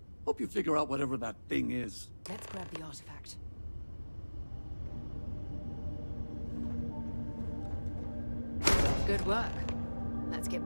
Hope you figure out whatever that thing is. Let's grab the artifact. Good work. Let's get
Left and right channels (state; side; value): inverted; both; correlation -1.00